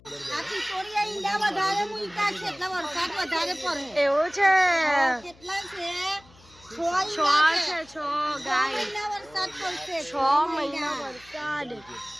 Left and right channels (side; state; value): left; noise; hum, 26 dB below the sound